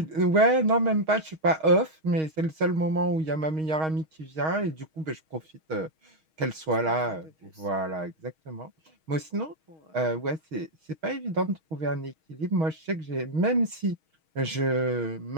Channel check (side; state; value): left; late; 6.3 ms